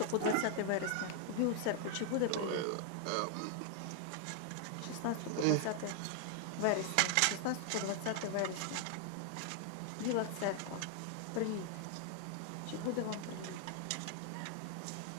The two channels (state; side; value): different; both; correlation 0.00